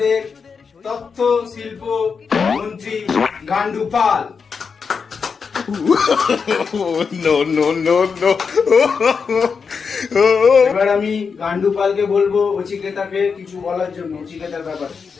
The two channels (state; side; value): quieter; right; 5.6 dB